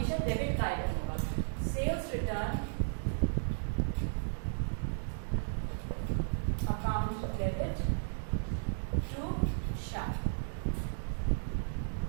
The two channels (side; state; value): left; silent; digital silence